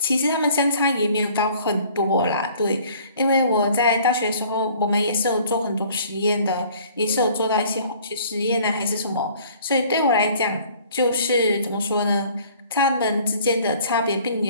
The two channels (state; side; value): inverted; both; correlation -0.53